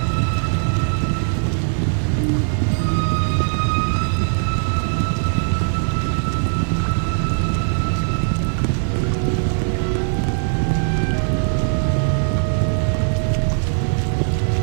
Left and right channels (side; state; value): left; silent; 56 dB below the other